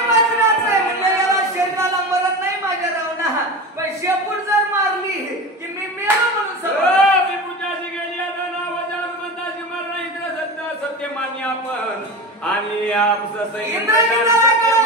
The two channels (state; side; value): normal; both; correlation 0.27